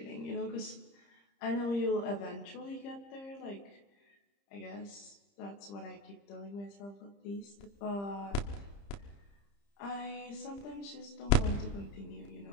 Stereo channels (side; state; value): right; late; 30 ms